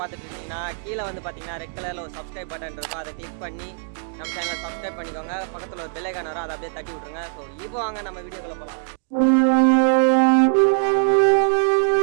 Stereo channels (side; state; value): left; silent; digital silence